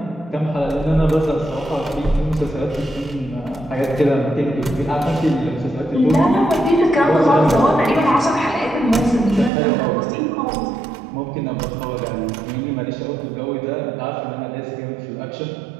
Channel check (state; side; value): drops out; left; at 9.5 s